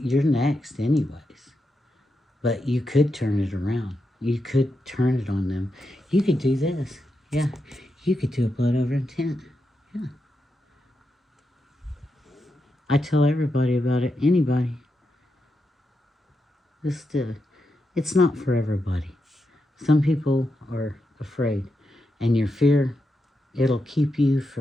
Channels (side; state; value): both; normal; correlation 0.86